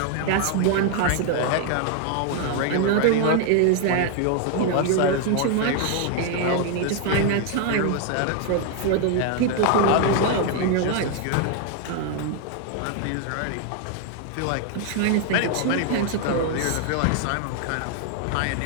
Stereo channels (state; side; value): different; both; correlation 0.00